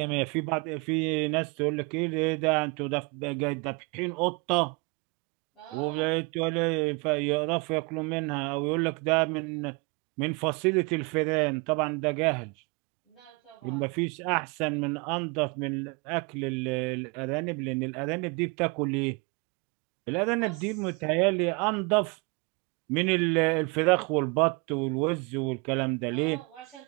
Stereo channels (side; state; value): left; quieter; 29.7 dB